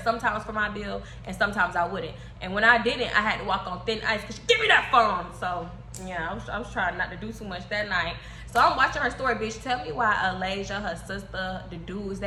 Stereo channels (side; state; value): both; identical; correlation 1.00